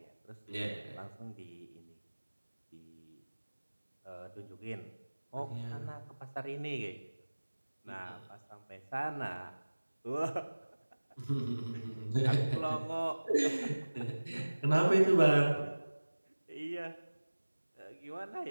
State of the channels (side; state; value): both; inverted; correlation -1.00